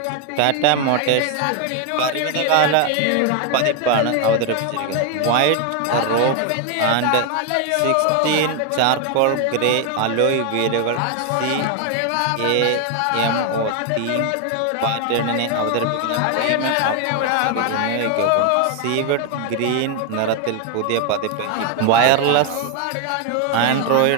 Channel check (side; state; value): both; different; correlation 0.01